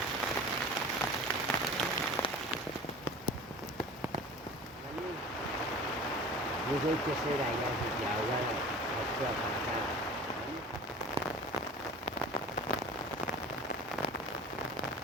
Tôi cái xe này ra thì giàu ra là học ra học ra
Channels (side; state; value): both; normal; correlation 0.39